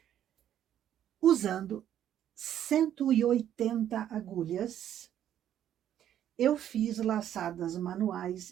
usando 180 agulhas, eu fiz laçadas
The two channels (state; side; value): quieter; left; 10.7 dB